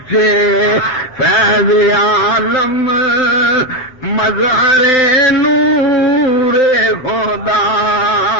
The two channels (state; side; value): late; right; 7.8 ms